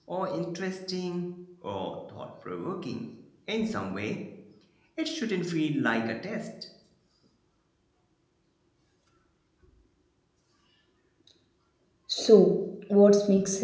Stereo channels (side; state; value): both; identical; correlation 1.00